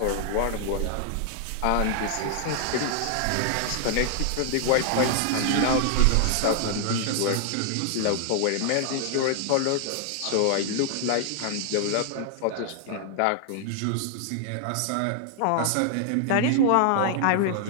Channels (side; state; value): both; different; correlation 0.00